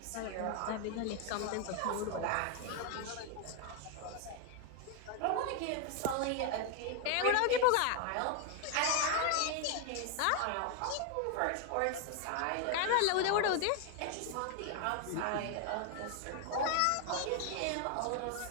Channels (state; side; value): different; both; correlation 0.01